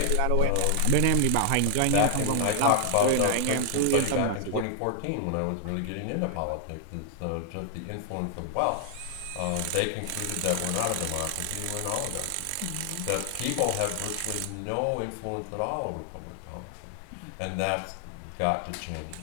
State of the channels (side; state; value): both; different; correlation 0.00